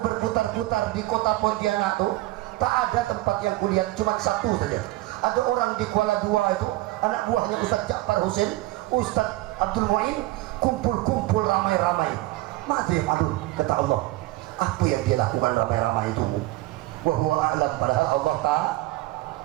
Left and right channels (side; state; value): left; quieter; 18.2 dB